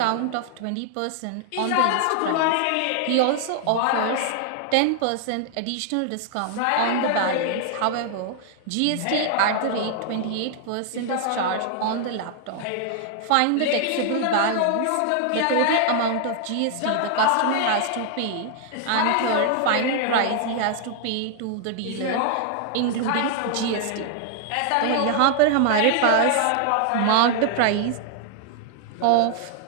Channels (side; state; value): both; different; correlation 0.00